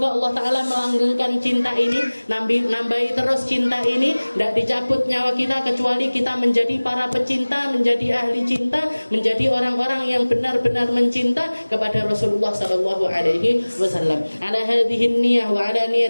Allah Ta'ala melanggengkan cinta ini, nambahi terus cinta ini, tidak dicabut nyawa kita kecuali kita menjadi para pecinta, menjadi ahli cinta, menjadi orang-orang yang benar-benar mencinta kepada Rasulullah Sallallahu Alaihi Wasallam. Ala hadhihi niyah wa ala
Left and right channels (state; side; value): inverted; both; correlation -1.00